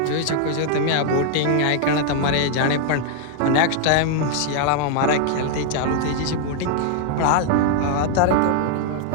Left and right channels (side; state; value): both; different; correlation 0.00